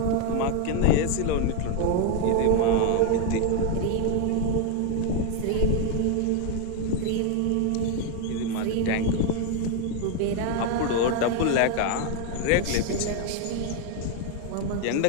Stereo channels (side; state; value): both; different; correlation 0.01